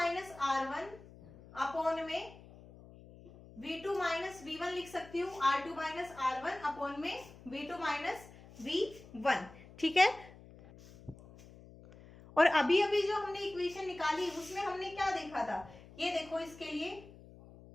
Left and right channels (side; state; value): left; noise; hum, 20 dB below the sound